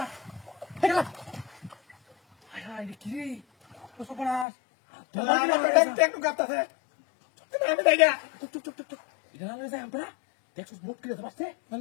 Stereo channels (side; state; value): right; drops out; at 4.5 s